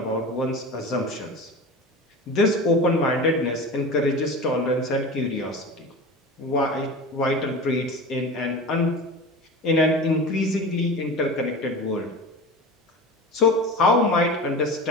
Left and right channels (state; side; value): normal; both; correlation 0.31